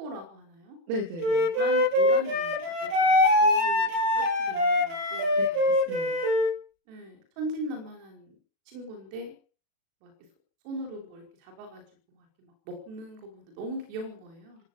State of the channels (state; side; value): late; left; 36 ms